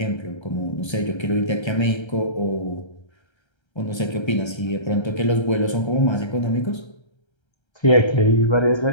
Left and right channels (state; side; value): late; right; 1.3 ms